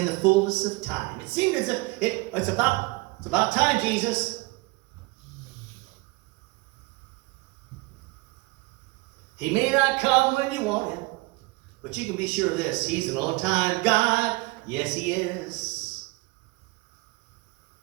the fullness of time. It seemed as if it's about time, Jesus. He may not come when you want him, but you can be sure of this. He's an on-time God. Yes, he is.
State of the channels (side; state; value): left; quieter; 24.2 dB